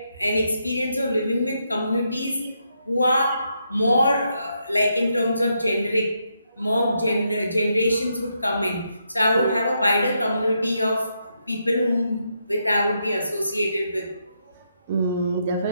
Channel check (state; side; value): inverted; both; correlation -0.80